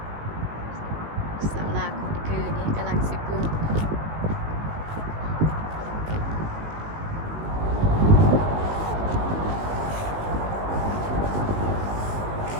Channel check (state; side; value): late; left; 19 ms